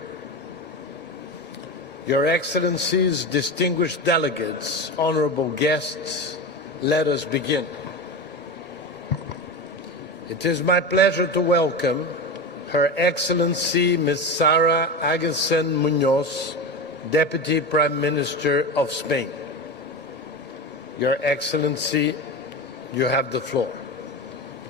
Your Excellencies, distinguished delegates, honorable guests, let us begin. It is my pleasure to welcome Her Excellency Ms. Sara Agustín Muñoz, Deputy Prime Minister of Spain. Your Excellency, you have the floor.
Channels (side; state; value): both; normal; correlation 0.23